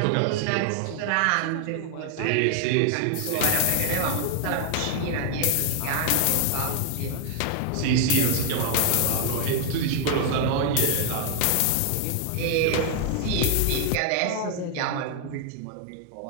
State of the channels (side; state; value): both; different; correlation 0.00